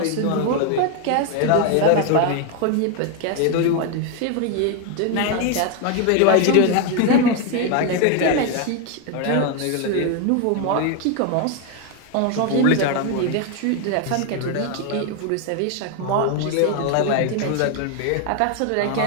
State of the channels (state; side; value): different; both; correlation 0.01